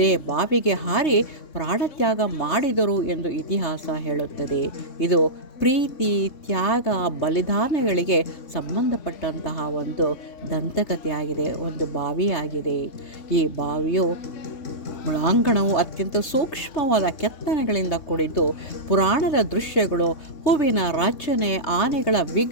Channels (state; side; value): late; right; 3.3 ms